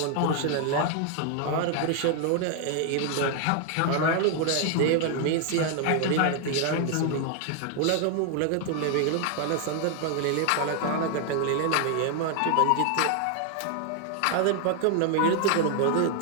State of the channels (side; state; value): both; different; correlation 0.00